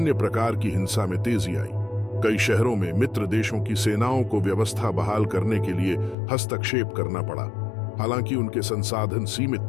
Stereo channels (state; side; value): drops out; right; at 6.2 s